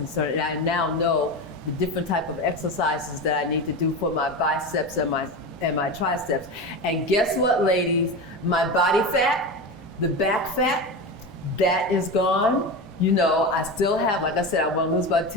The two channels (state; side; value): normal; both; correlation 0.23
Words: And I now know the different type of exercises that I need to do for my biceps and my triceps. And guess what, ladies? My body fat, the back fat, that is gone. You know, I still have, like I said, I want to lose about